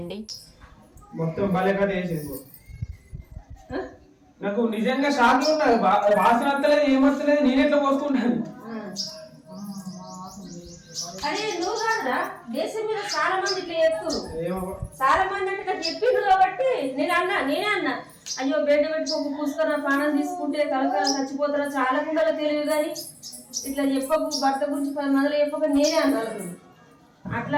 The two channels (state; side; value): identical; both; correlation 1.00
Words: మొత్తం బలేగా చేసింది. నాకు నిజంగా షాక్ లో ఉన్నది. వాసన వస్తలేదు, ఏమొస్తలేదు. నేను ఎట్లా పోసుకుంటాను? అరే నువ్వు కాదురా, దేశం మీద చాలా మంది ఇట్లా చెప్తారు. చాలా మంది అంటే నాకు చెప్పిండ్రు కాబట్టి నేనే అన్నా అయ్యో బెడ్ పెట్టుకోకు, పూసుకొని పానం తీసుకుంటే కలకాల చచ్చిపోతారా, చాలా కుండలో తెలియదు కానీ ఇట్లా చెప్పకు, భర్త గురించి 10 మందిలో చెప్పక నేనే అన్నాను. అట్లా